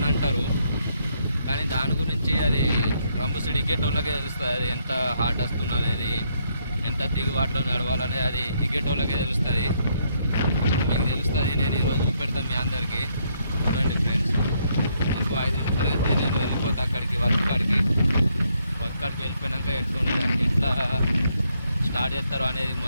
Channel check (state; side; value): inverted; both; correlation -0.73